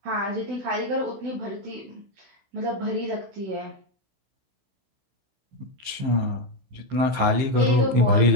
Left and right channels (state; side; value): late; left; 15 ms